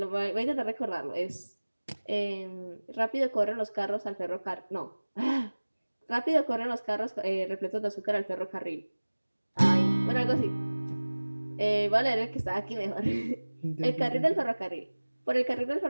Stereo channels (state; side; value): inverted; both; correlation -1.00